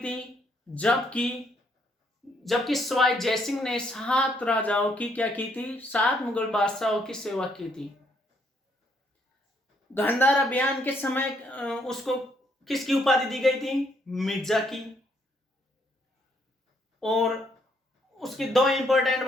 जबकि सवाई जयसिंह ने 7 राजाओं की क्या की थी? 7 मुगल बादशाहों की सेवा की थी। गांधार अभियान के समय उसको किसकी उपाधि दी गई थी? मिर्जा की। और उसकी 2 इंपॉर्टेंट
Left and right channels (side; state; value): both; normal; correlation 0.71